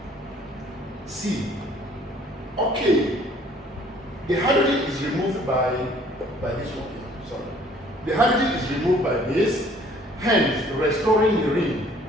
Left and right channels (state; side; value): normal; both; correlation 0.57